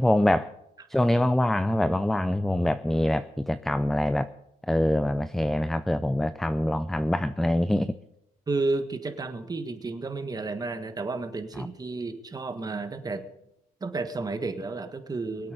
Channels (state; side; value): normal; both; correlation 0.94